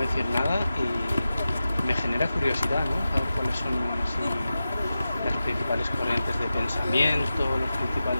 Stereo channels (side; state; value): both; inverted; correlation -0.93